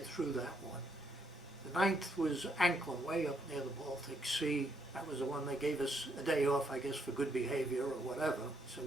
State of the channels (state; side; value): normal; both; correlation 0.74